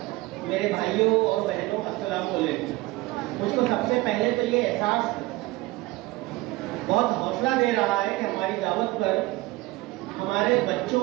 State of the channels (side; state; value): left; quieter; 20.3 dB